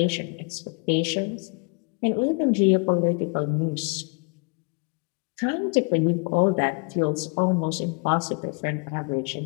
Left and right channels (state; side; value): quieter; right; 33.1 dB